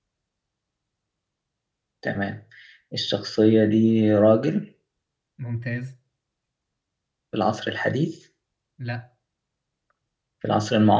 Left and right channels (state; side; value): identical; both; correlation 1.00